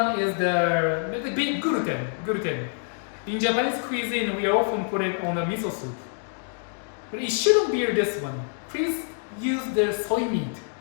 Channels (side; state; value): right; silent; 57 dB below the other